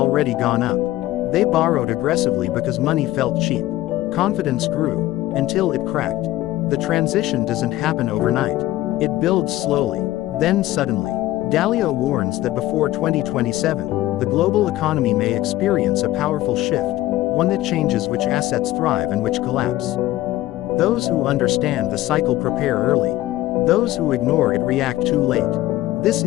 gone up. They borrowed aggressively because money felt cheap. Confidence grew, until it cracked. The transition doesn't happen overnight. It builds slowly, then suddenly. Dalio warns that before 2027, the global economy may experience a powerful shift, one that changes which assets thrive and which collapse. Those who understand the cycle prepare early. Those who ignore it react too late. This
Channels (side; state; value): right; quieter; 15.8 dB